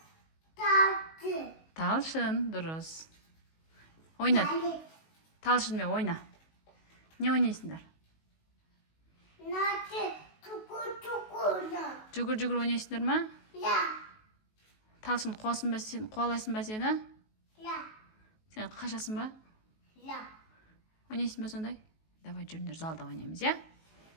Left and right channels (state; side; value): late; right; 19 ms